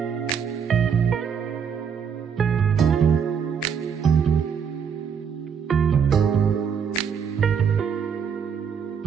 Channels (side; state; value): left; quieter; 7.1 dB